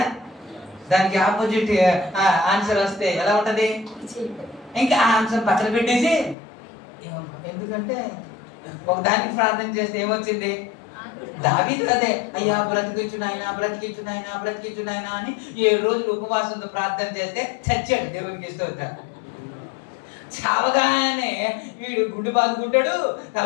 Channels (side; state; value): right; drops out; at 6.4 s